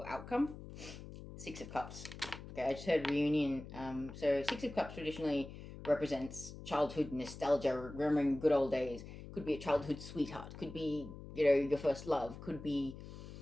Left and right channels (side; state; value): left; noise; hum, 13 dB below the sound